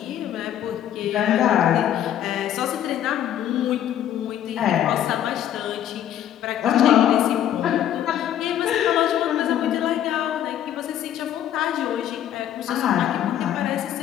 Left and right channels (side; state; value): right; quieter; 10.9 dB